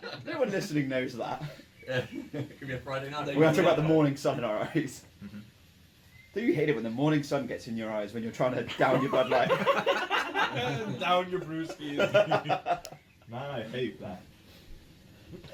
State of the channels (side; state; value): both; identical; correlation 1.00